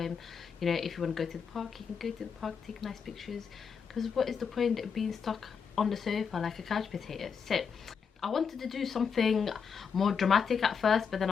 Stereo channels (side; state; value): right; quieter; 6.4 dB